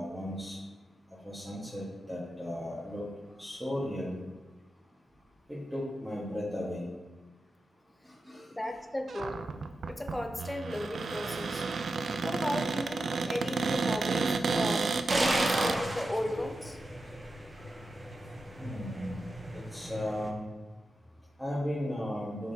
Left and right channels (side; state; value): both; normal; correlation 0.90